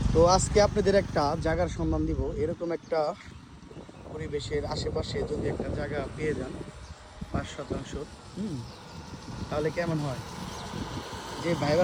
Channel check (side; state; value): both; identical; correlation 1.00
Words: তো আজকে আপনাদের একটা জায়গার সন্ধান দিব। এরকম একটা পরিবেশের আশেপাশে যদি একটা জায়গা পেয়ে যান 5% তাহলে কেমন হয়? যে ভাই